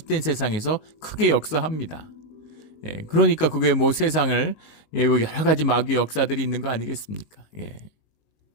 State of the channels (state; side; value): late; right; 19 ms